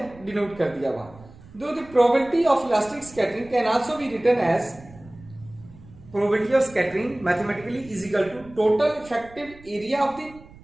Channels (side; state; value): right; noise; rumble, 21 dB below the sound